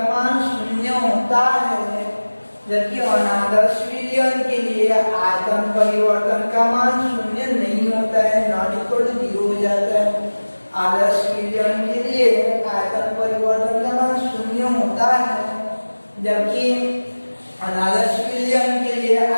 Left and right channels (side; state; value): both; inverted; correlation -1.00